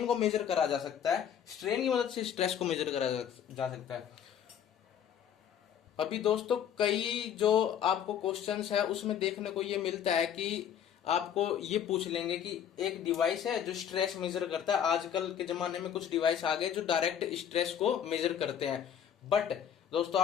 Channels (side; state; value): right; quieter; 9.0 dB